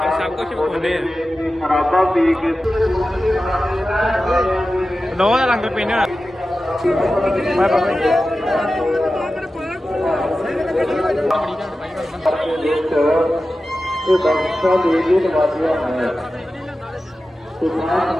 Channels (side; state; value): both; normal; correlation 0.94